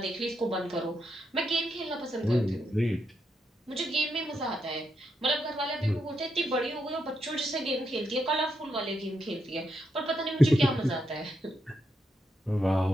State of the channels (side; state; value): both; normal; correlation 0.81